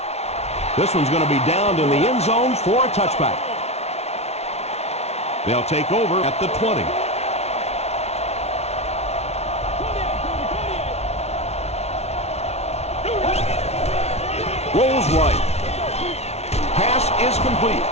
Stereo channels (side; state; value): right; late; 0.31 ms